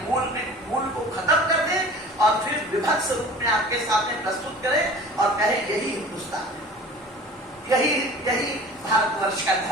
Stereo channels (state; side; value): normal; both; correlation 0.42